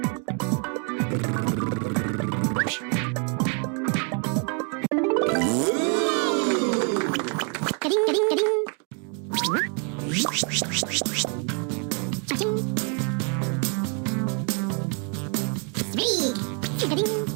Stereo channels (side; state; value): left; quieter; 37.2 dB